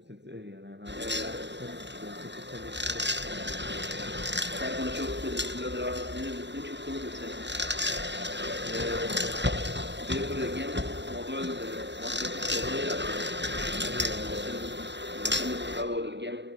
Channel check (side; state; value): left; late; 0.52 ms